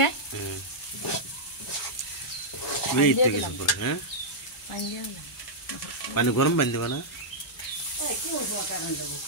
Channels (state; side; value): normal; both; correlation -0.08